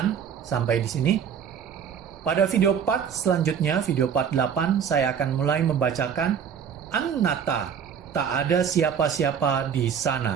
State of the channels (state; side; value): quieter; left; 7.6 dB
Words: sampai di sini. Pada video part selanjutnya, video part 8, saya akan mulai membacakan Anatta, tak ada siapa-siapa di